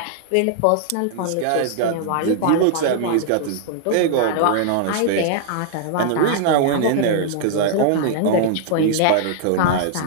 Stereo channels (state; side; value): different; both; correlation -0.01